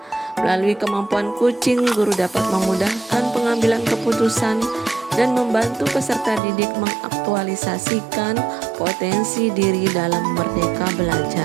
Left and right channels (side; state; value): left; drops out; at 6.4 s